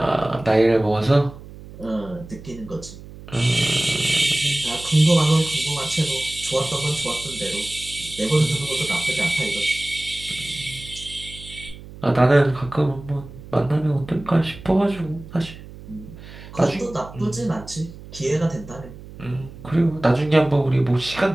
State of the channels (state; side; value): noise; right; hum, 16 dB below the sound